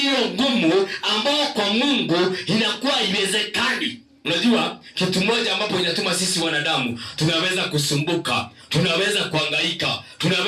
hiyo gumu ambao kwa Mungu inakuwa iwezekani? Unajua kitu moja ambapo inatuma sisi wanadamu tunaweza kusumbuka, tunaweza kuhangaika,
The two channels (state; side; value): identical; both; correlation 1.00